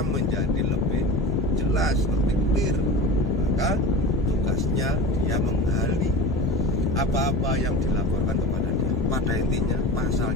menjadi lebih jelas, lebih clear. Maka tugasnya dia menggali apa-apa yang dilaporkan kepada dia. Pada intinya pas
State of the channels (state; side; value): normal; both; correlation 0.32